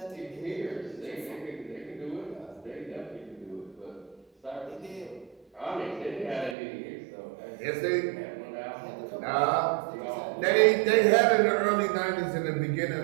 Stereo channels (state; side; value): drops out; left; at 6.6 s